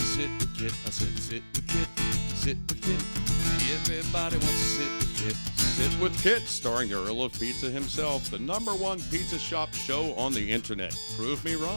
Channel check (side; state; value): both; inverted; correlation -1.00